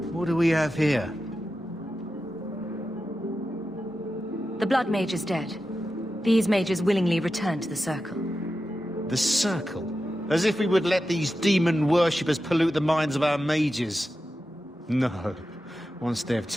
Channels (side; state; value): both; normal; correlation 0.91